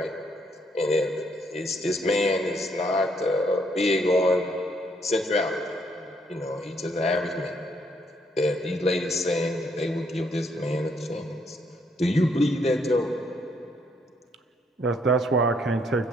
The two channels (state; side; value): normal; both; correlation 0.71